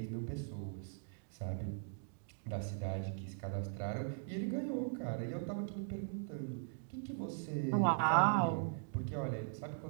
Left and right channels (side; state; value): left; silent; digital silence